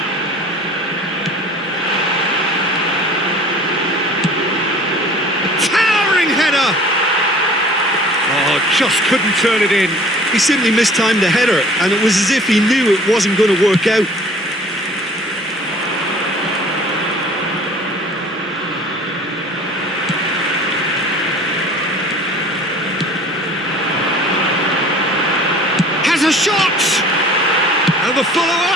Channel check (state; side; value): normal; both; correlation 0.47